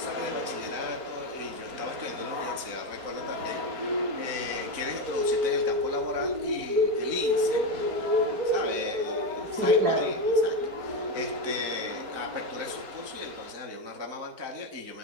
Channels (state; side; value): late; left; 4.0 ms